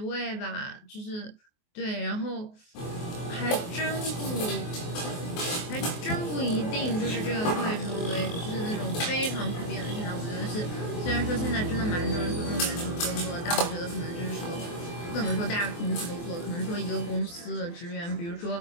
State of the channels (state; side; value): late; right; 24 ms